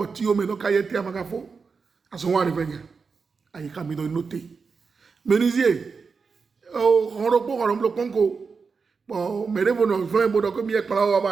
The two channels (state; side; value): quieter; left; 5.0 dB